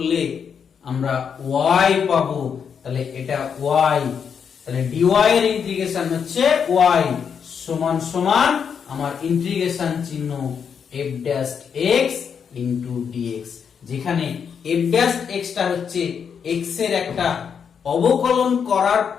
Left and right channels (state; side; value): quieter; right; 7.0 dB